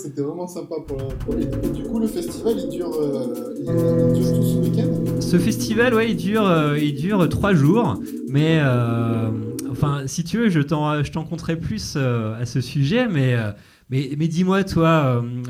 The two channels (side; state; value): both; identical; correlation 1.00